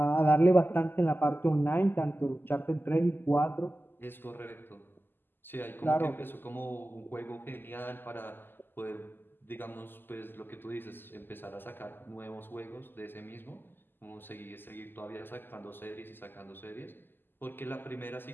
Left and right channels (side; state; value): right; late; 0.095 ms